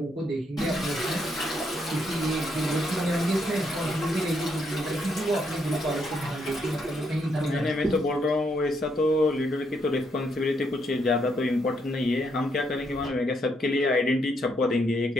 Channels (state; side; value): normal; both; correlation 0.75